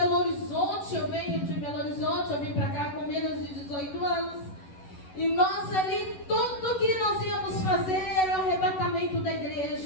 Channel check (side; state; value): right; late; 11 ms